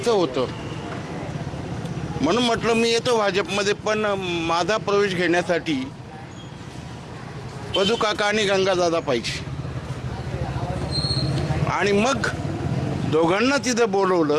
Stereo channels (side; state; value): both; identical; correlation 1.00